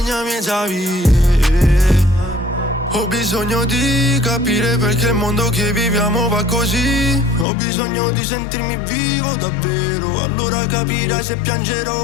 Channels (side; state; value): right; drops out; at 7.5 s